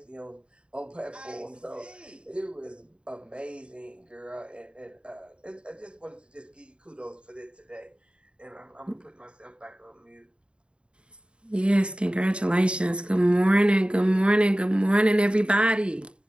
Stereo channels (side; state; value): left; late; 0.055 ms